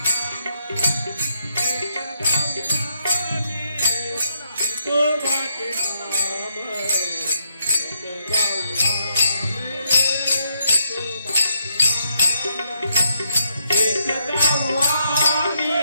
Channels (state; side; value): inverted; both; correlation -0.76